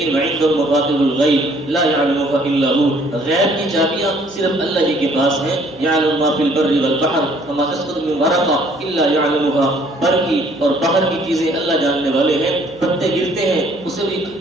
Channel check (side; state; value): right; noise; hum, 27 dB below the sound